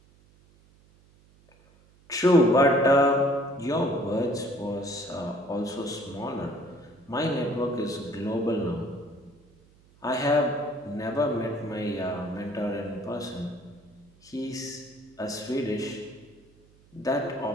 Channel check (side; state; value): right; noise; hum, 29 dB below the sound